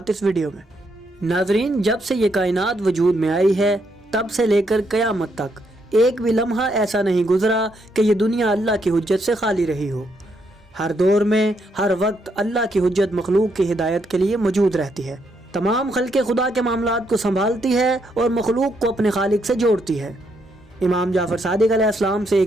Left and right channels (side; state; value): both; normal; correlation 0.76